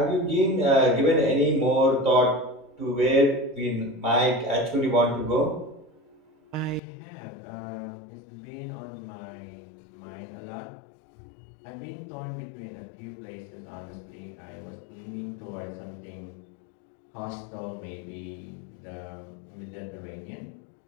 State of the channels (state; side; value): drops out; right; at 6.8 s